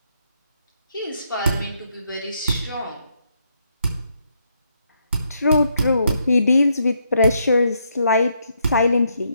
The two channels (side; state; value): both; inverted; correlation -0.76